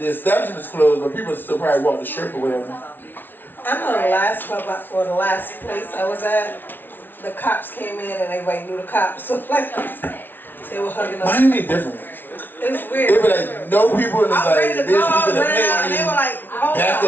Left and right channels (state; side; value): late; right; 0.095 ms